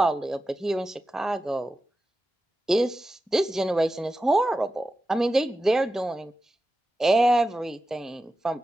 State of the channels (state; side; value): normal; both; correlation 0.93